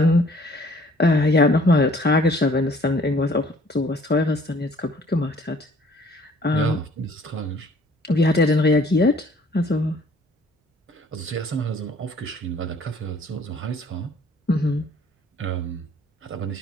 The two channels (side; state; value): both; normal; correlation 0.57